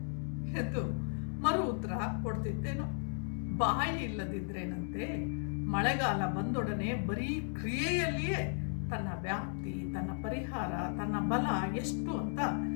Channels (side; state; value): right; silent; 54 dB below the other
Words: ಎಂದು ಮರು ಉತ್ತರ ಕೊಡ್ತಿದ್ದೇನೋ. ಬಾಯಿ ಇಲ್ಲದಿದ್ರೇನಂತೆ ಮಳೆಗಾಲ ಬಂದೊಡನೆ ಬರೀ ಕ್ರಿಯೆಯಲ್ಲಿಯೇ ತನ್ನ ವ್ಯಾಪ್ತಿ, ತನ್ನ ಪರಿಹಾರ, ತನ್ನ ಬಲ ಎಷ್ಟು ಅಂತ